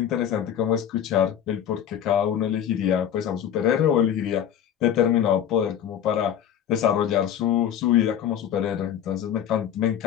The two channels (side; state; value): right; quieter; 9.5 dB